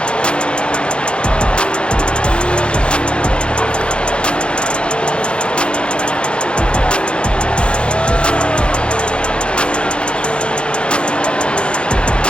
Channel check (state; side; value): late; right; 0.056 ms